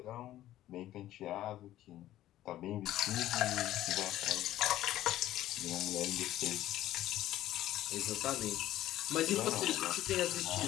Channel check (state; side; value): quieter; right; 13.9 dB